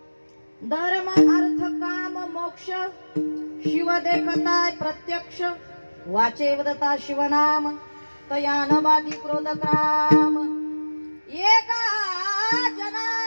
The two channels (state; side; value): inverted; both; correlation -1.00